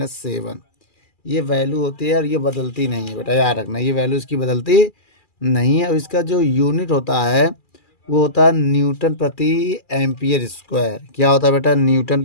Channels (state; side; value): late; right; 2.4 ms